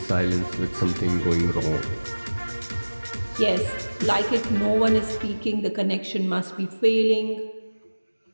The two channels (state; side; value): inverted; both; correlation -1.00